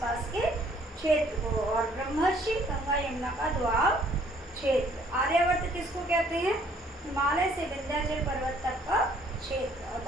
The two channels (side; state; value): both; normal; correlation 0.61